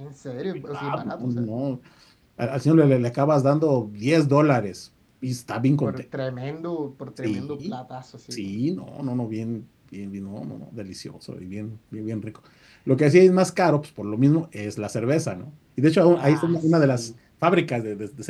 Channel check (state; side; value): identical; both; correlation 1.00